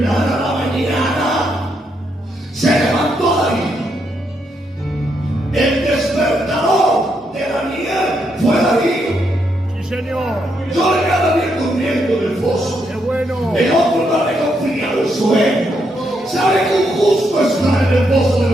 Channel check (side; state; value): both; normal; correlation 0.78